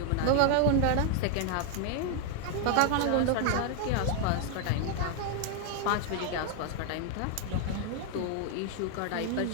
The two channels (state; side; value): different; both; correlation 0.00